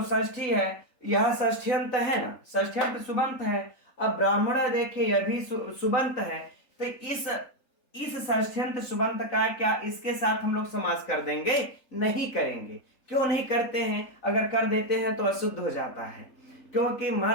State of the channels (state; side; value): late; right; 3.8 ms